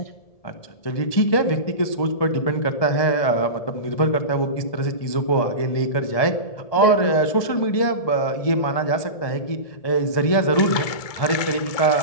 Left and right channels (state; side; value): late; right; 1.7 ms